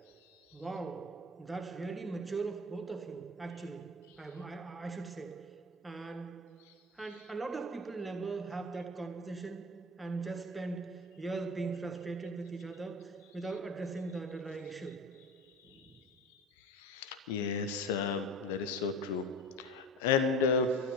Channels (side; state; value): both; normal; correlation 0.33